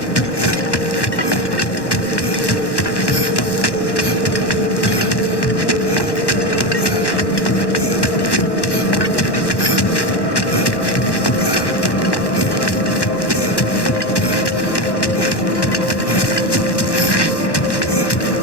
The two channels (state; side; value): late; right; 1.1 ms